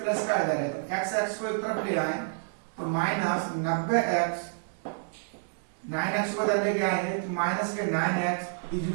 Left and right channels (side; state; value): left; silent; digital silence